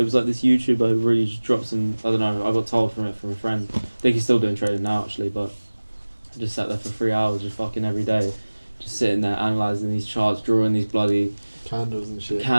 was like this YouTuber who really just dropped some. I don't know. I got told from a friend. I think he's still doing trading now actually, but I just sat there for 3 hours, just fucking every day, just sitting there analysing these charts, drawing these bloody Candles and shit.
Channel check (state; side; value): inverted; both; correlation -1.00